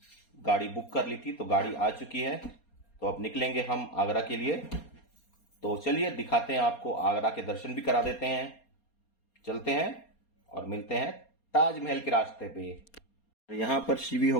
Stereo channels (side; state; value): right; late; 4.3 ms